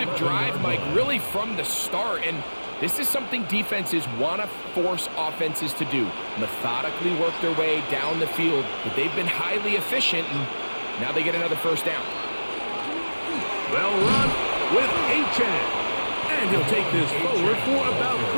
drive, Mike, really from the start. And this is something defenses want to force offenses to do. Methodically work their way down the field. But they've been highly efficient, and now they get another first down. Well run with A-Chan. And he'll take this forward for about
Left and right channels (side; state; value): both; inverted; correlation -1.00